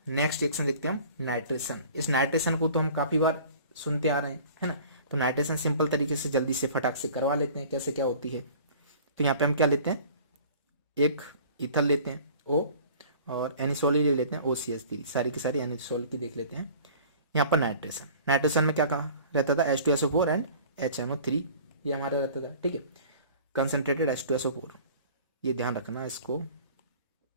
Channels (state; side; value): inverted; both; correlation -0.46